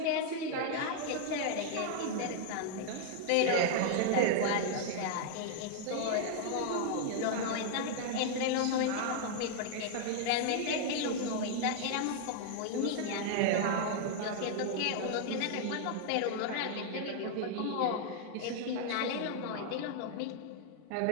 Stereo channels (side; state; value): both; different; correlation 0.00